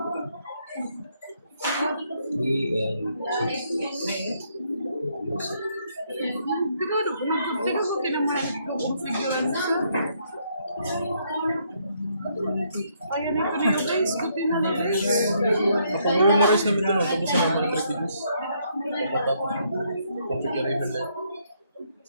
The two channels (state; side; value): inverted; both; correlation -0.72